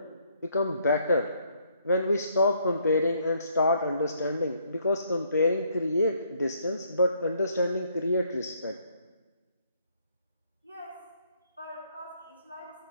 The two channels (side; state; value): both; inverted; correlation -0.68